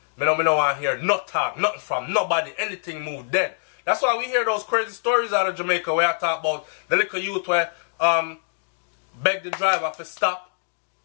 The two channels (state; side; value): silent; right; digital silence